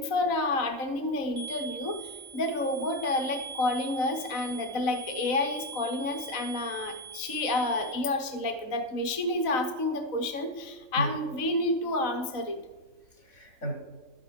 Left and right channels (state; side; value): late; right; 3.9 ms